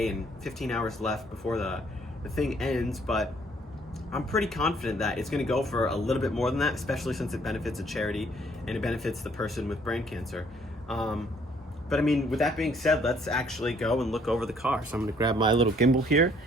and 15 hours left before the thing ends, but I'm pretty confident that it's gonna go for a little bit more than that, especially since it benefits a charity and it benefits the person with brain cancer. But I mean, with that being said, let's actually go and look over the car. So I'm gonna grab my little gimbal here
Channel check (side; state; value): both; normal; correlation 0.63